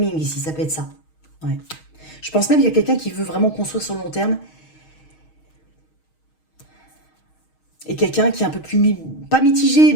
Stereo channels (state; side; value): late; right; 6.4 ms